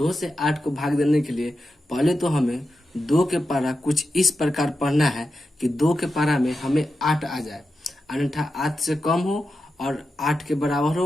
से 8 को भाग देने के लिए पहले तो हमें 2 के पारा कुछ इस प्रकार पढ़ना है कि 2 के पारा में हमें 8 आ जाए, अन्यथा 8 से कम हो और 8 के बराबर हो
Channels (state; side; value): normal; both; correlation 0.90